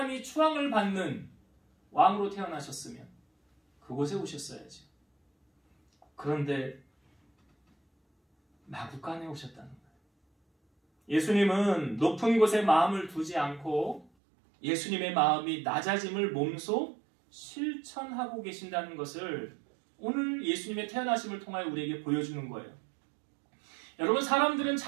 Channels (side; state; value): left; drops out; at 14.1 s